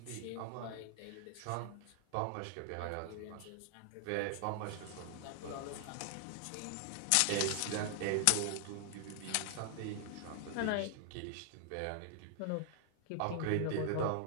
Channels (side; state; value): both; different; correlation 0.00